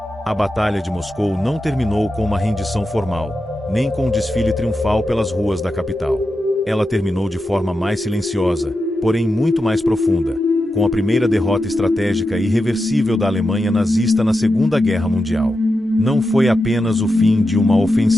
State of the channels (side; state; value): both; normal; correlation 0.89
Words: A Batalha de Moscou não terminou com uma rendição formal, nem com um desfile triunfal pelas ruas da capital. Ela terminou de forma mais silenciosa, porém muito mais profunda, com a primeira derrota estratégica e irreversível da Alemanha nazista na Segunda Guerra Mundial. Não foi apenas o fim de uma